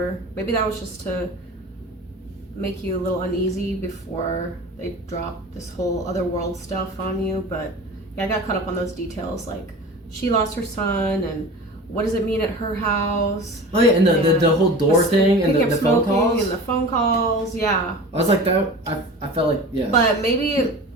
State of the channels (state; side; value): normal; both; correlation 0.36